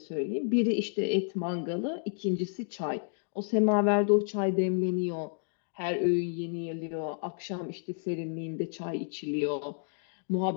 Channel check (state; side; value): silent; right; digital silence